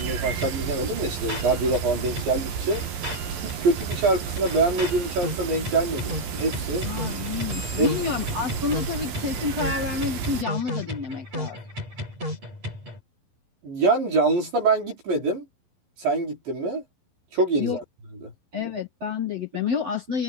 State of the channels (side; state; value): left; late; 11 ms